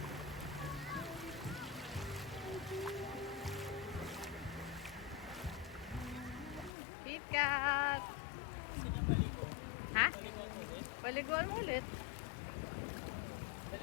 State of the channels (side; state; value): right; drops out; at 6.7 s